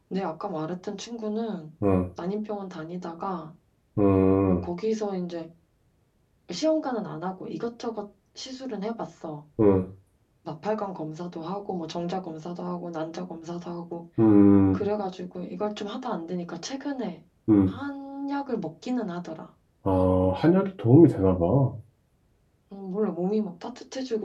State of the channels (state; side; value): identical; both; correlation 1.00